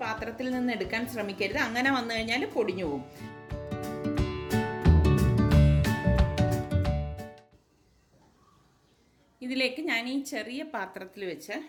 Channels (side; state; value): both; identical; correlation 1.00